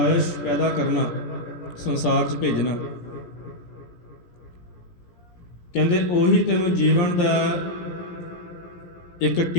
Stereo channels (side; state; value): right; late; 17 ms